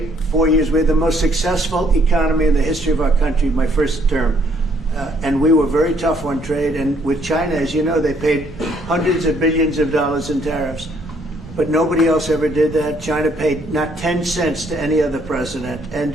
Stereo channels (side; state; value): both; normal; correlation 0.66